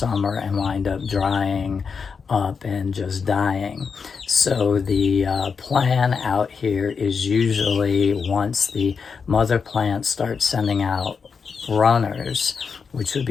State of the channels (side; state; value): right; quieter; 5.7 dB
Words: and wind up drying up and just dying. So the plan out here is usually once the mother plant starts sending out runners, which would